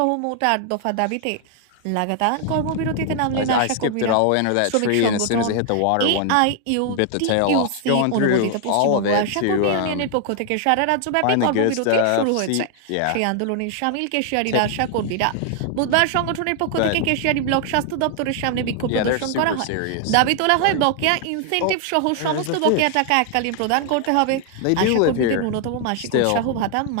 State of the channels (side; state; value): both; different; correlation 0.00